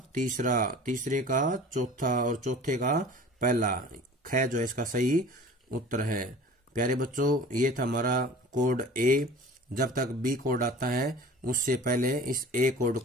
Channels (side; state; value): both; normal; correlation 0.42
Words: तीसरा, तीसरे का चौथा और चौथे का पहला। ख जो है इसका सही उत्तर है। प्यारे बच्चों, ये था हमारा कोड ए। जब तक बी कोड आता है उससे पहले इस ए कोड